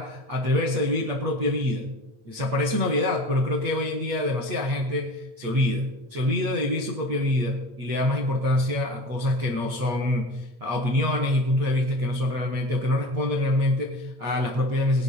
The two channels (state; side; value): late; left; 8.5 ms